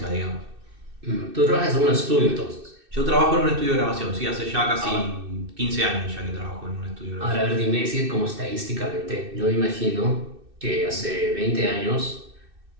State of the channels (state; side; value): late; left; 2.6 ms